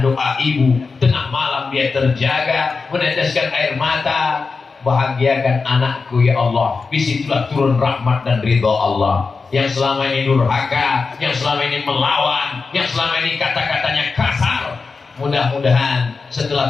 doa ibu. Tengah malam dia terjaga, meneteskan air mata. Bahagiakan anakku ya Allah. Disitulah turun rahmat dan ridha Allah. Yang selama ini durhaka, yang selama ini melawan, yang selama ini kata-katanya kasar, mudah-mudahan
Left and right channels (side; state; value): right; quieter; 4.5 dB